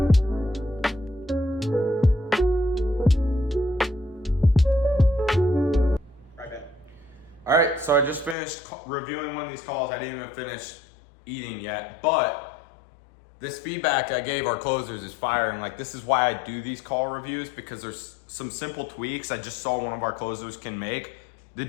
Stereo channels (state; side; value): drops out; right; at 8.3 s